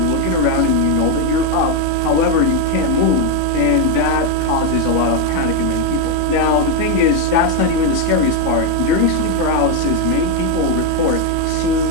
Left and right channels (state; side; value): different; both; correlation 0.02